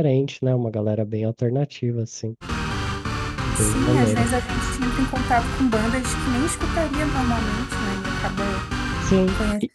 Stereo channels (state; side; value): identical; both; correlation 1.00